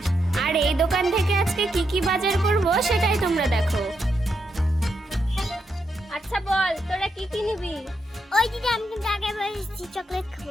আর এই দোকান থেকে আজকে কি কি বাজার করব সেটাই তোমরা দেখো। আচ্ছা বল, তোরা কি কি নিবি? ওই দিদি আমি কিন্তু আগে বলেছি চকলেট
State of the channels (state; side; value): normal; both; correlation 0.82